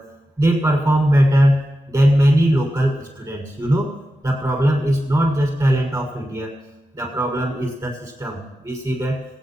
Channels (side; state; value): both; normal; correlation 0.91